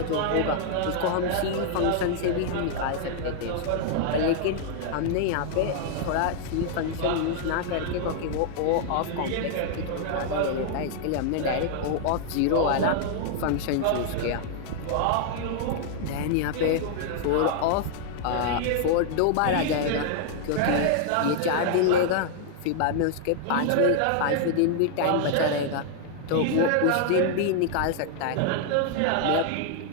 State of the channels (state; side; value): different; both; correlation 0.00